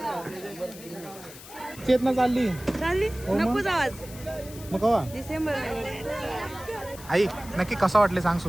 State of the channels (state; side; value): noise; left; hiss, 17 dB below the sound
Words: चेतना चालली नकोच आवाज. मग कवा डिसेंबर आई नक्की कसं वाटले सांग